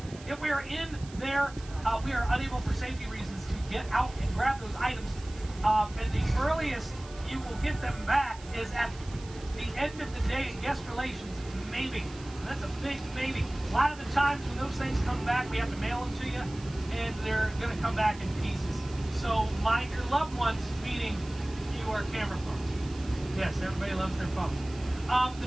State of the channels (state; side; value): noise; right; hiss, 19 dB below the sound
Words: If we are in there, we are unable for safety reasons to get out and grab those items. And the earliest you will get them back is at the end of the day in guest relations, maybe. That's a big maybe. A lot of the times when those things come back, we have to mail them to you, and they're going to come back in pieces. So mind your loved ones, meaning your camera phones. Yes, everybody loves their phones. The